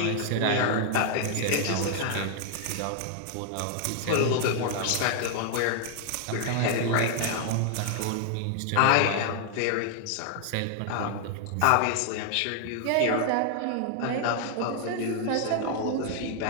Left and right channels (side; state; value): both; different; correlation 0.00